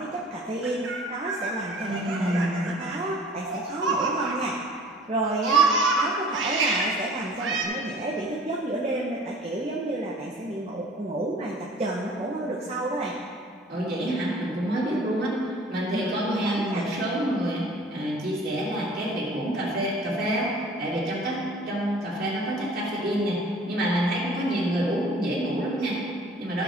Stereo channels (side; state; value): both; normal; correlation 0.49